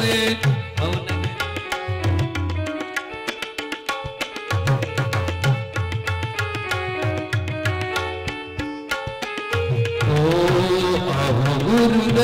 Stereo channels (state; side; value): identical; both; correlation 1.00